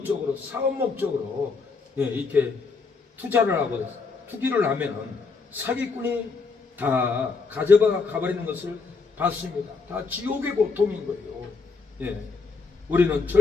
사업 목적으로 이렇게 투자를 하고 투기를 하면은 사기꾼이 다 가져가 가버리는 것을 봤습니다. 다 지옥의 고통인 거예요. 우리는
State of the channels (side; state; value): right; quieter; 4.5 dB